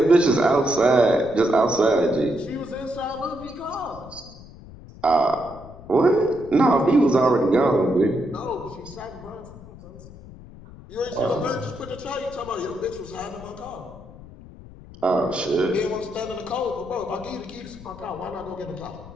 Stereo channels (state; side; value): noise; left; rumble, 18 dB below the sound